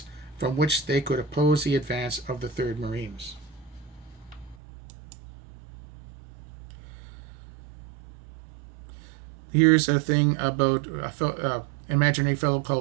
from which they could oppose the advance of the 3rd Marines. Here's a thing about an imaginary fellow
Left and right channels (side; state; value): left; drops out; at 4.5 s